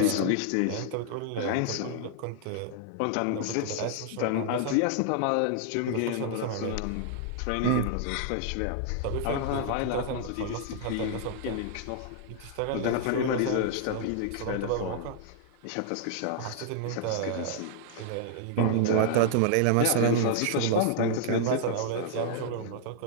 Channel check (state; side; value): different; both; correlation -0.01